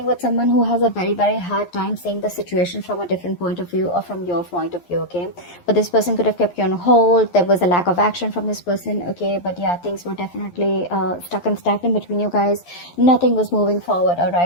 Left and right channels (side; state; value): right; late; 11 ms